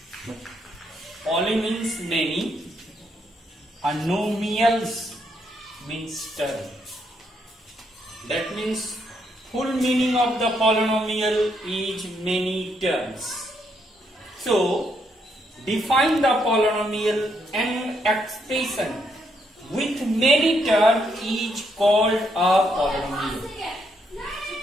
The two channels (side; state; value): both; normal; correlation 0.75